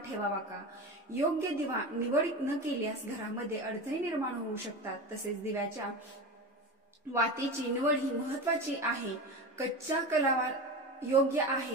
ठेवावा का? योग्य दिवा निवड न केल्यास घरामध्ये अडचणी निर्माण होऊ शकतात। तसेच दिव्याच्या वातीची निवड ही महत्त्वाची आहे। कच्च्या कलावा योग्य आहे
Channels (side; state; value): both; normal; correlation 0.25